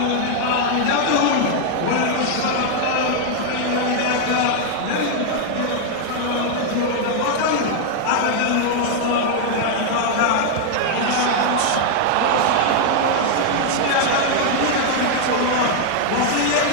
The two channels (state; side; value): different; both; correlation 0.00